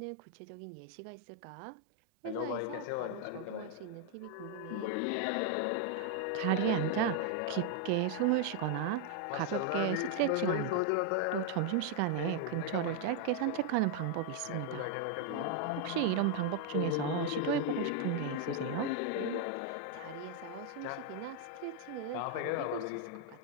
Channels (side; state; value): both; different; correlation 0.00